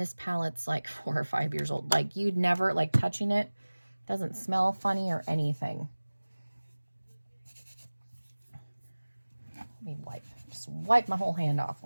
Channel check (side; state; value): both; inverted; correlation -1.00